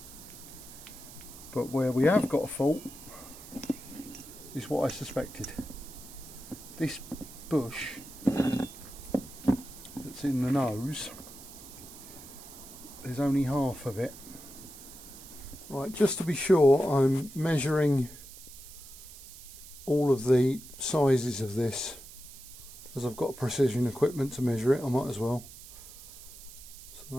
but where we have got a fault is what I suspected. This bush that's in the nose, there's only half of it. Right, just to be sure, I'm measuring all of the sizes of this, as I've got precision equipment to measure it. I might as well. So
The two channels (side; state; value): right; noise; hiss, 16 dB below the sound